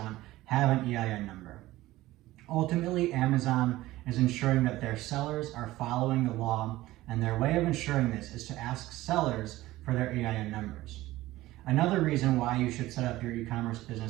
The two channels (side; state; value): left; quieter; 17.0 dB